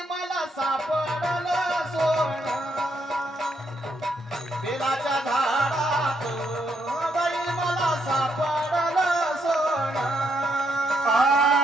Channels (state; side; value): normal; both; correlation 0.76